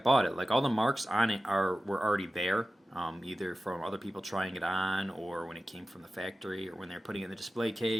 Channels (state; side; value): normal; both; correlation 0.95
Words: it. Like all the marks on it were already there, either from other people trying it on, or when it came from the factory, or when they're putting it in the display